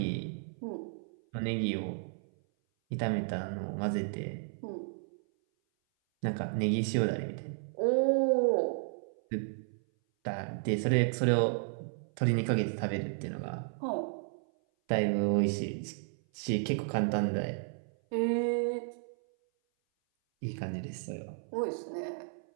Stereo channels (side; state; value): left; silent; 56 dB below the other